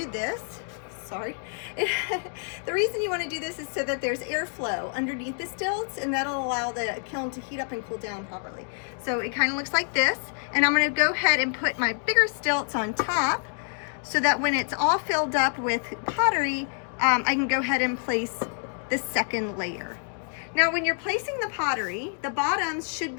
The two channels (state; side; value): silent; right; 57 dB below the other